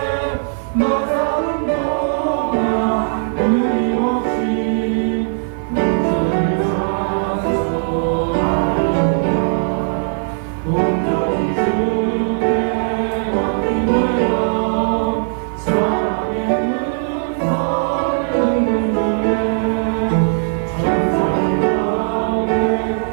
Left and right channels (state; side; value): silent; left; 57 dB below the other